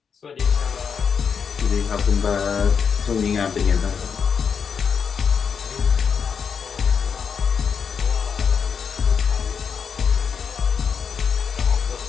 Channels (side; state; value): right; quieter; 6.5 dB